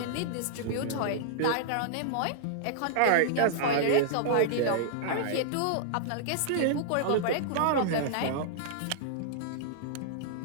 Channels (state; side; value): different; both; correlation -0.02